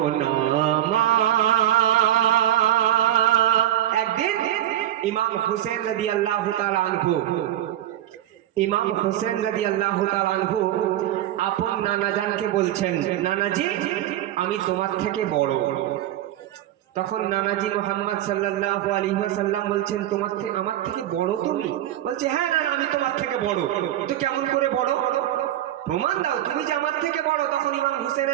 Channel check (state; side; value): quieter; left; 12.6 dB